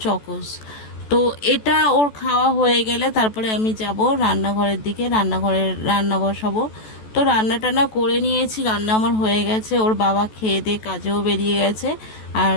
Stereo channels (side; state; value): right; late; 14 ms